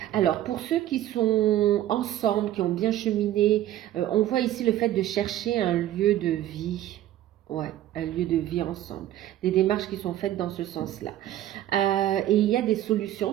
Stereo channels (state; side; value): quieter; left; 13.1 dB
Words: Alors, pour ceux qui sont ensemble, qui ont bien cheminé, on voit ici le fait de chercher un lieu de vie. Ouais, un lieu de vie ensemble. Des démarches qui sont faites dans ce sens-là. Et il y a des solutions,